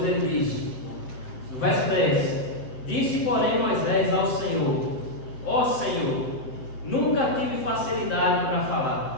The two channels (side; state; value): right; late; 7.7 ms